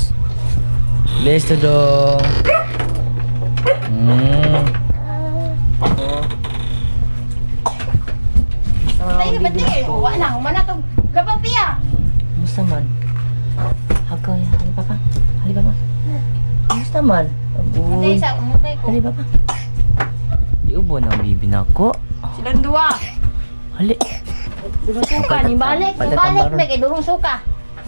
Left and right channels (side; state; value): both; inverted; correlation -1.00